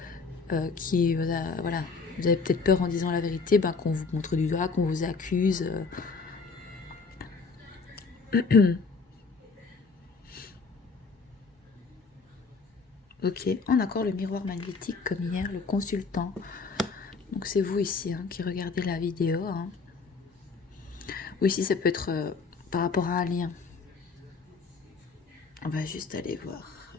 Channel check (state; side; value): quieter; right; 4.6 dB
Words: qui... Voilà. Vous avez peut-être peur en disant la vérité, ben, qu'on vous montre du doigt, qu'on vous accuse. Ok, on a encore le miroir magnétique comme hier, le consultant. Donc c'est vous ici hein, qui regardez la vidéo. Hein. Ou ici ça peut être par rapport à un lien. On va juste aller voir.